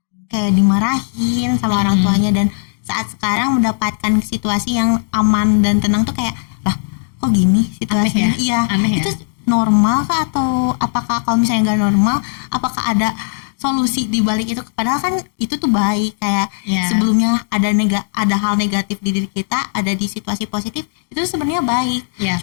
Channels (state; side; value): silent; right; digital silence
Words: kayak dimarahin sama orang tuanya, dan saat sekarang mendapatkan situasi yang aman dan tenang tuh kayak, lah kok gini situasinya? Aneh ya? Iya, Aneh ya? itu normal kah, atau apakah kalau misalnya nggak normal, apakah ada solusi di balik itu? Padahal kan itu tuh baik, kayak Iya. sebelumnya ada hal negatif di diri kita, ada di situasi positif, itu sebenarnya baik. Iya.